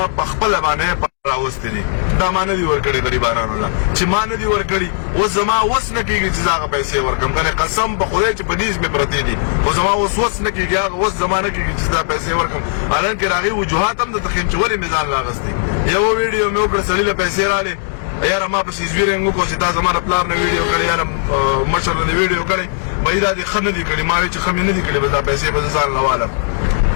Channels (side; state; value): right; silent; digital silence